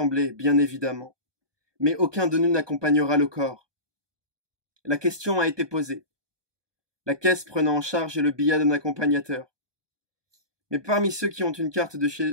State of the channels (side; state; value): left; late; 1.2 ms